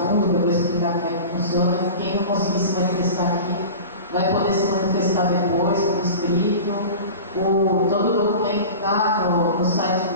que eu vou explicar como é que funciona. Quem não conseguir se manifestar aqui vai poder se manifestar depois, por escrito. Todo o documento está no site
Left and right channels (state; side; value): inverted; both; correlation -0.34